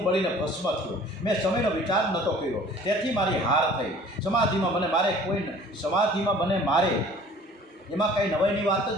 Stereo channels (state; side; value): normal; both; correlation 0.50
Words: બળીને ભસ્મ થયો. મેં સમયનો વિચાર નહોતો કર્યો, તેથી મારી હાર થઈ. સમાધિમાં મને મારે, કોઈ સમાધિમાં મને મારે એમાં કંઈ નવાઈની વાત